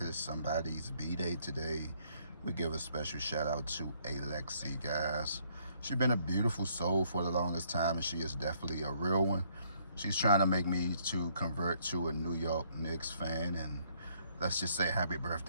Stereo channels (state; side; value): inverted; both; correlation -0.67